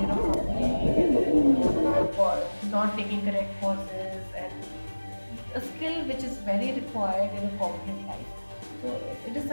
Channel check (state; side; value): inverted; both; correlation -1.00